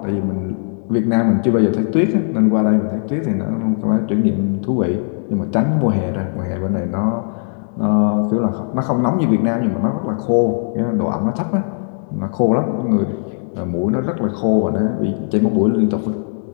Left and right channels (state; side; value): silent; right; 67 dB below the other